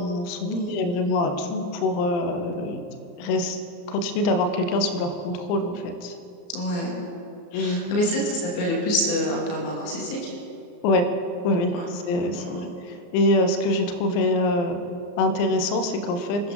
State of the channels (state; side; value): late; right; 34 ms